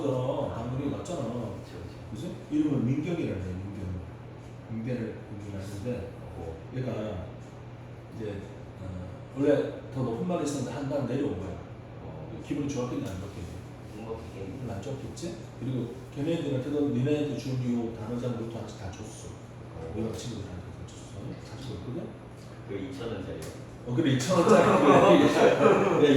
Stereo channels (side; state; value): both; identical; correlation 1.00